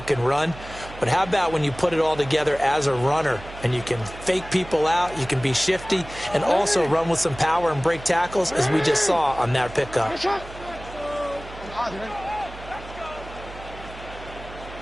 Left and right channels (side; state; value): right; noise; hum, 15 dB below the sound